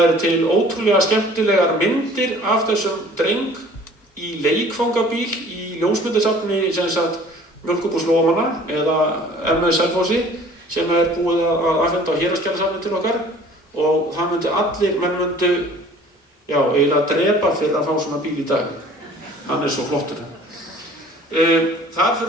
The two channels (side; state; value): both; normal; correlation 0.50